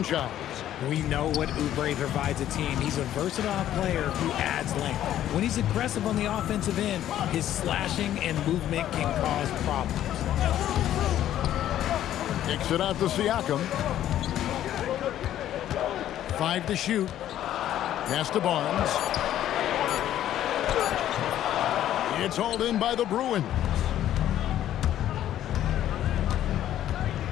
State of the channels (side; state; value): right; quieter; 11.9 dB